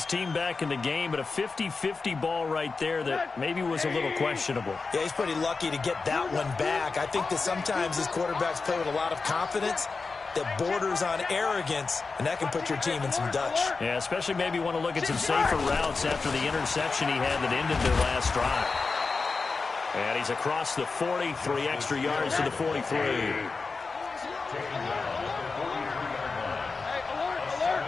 team back in the game, but a 50-50 ball right there that maybe was a little questionable. Yeah, he's pretty lucky to get that one back. I think that sometimes his quarterbacks play with a lot of confidence that borders on arrogance, and that can put your team in some Dutch. Yeah, especially maybe want to look at some safer routes after the interception he had that ended their last drive. And he's across the 40, 3 extra yards to the 43.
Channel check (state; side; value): quieter; right; 4.3 dB